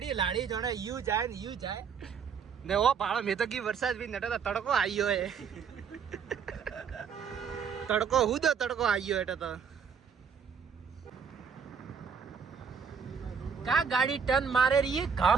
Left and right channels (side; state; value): left; quieter; 6.5 dB